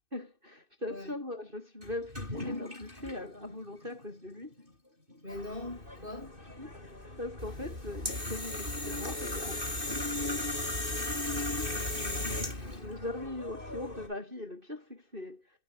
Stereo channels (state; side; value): late; left; 2.6 ms